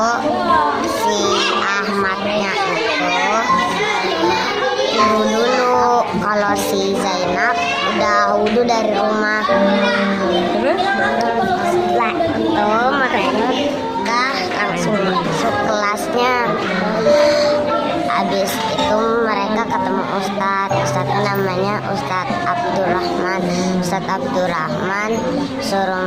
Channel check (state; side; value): identical; both; correlation 1.00